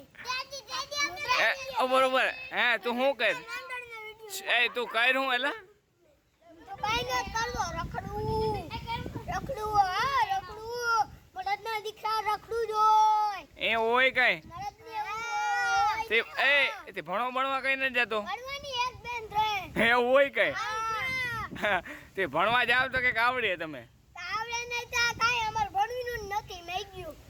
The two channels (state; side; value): identical; both; correlation 1.00